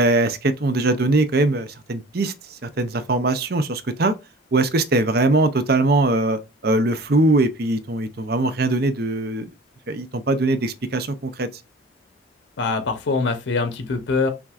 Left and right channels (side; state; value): both; normal; correlation 0.42